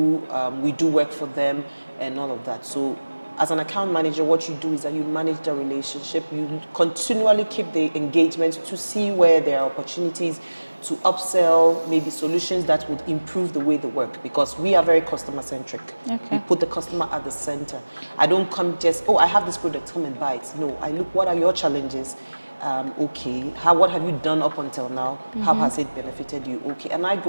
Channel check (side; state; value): both; inverted; correlation -1.00